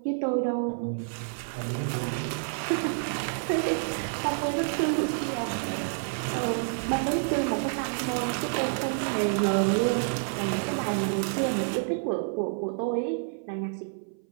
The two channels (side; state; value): left; silent; 59 dB below the other